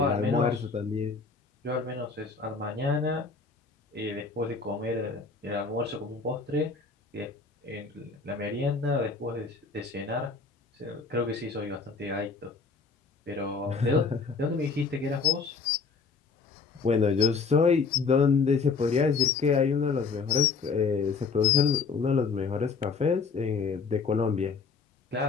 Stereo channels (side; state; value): right; quieter; 4.8 dB